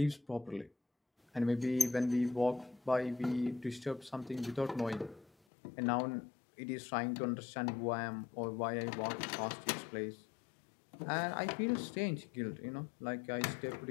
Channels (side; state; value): right; drops out; at 5.3 s